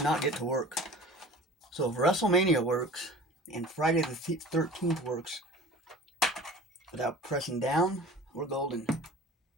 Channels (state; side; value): normal; both; correlation 0.41